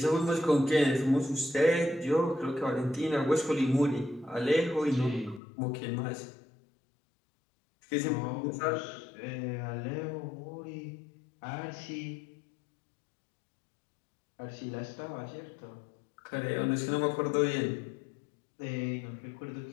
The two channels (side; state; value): right; drops out; at 5.4 s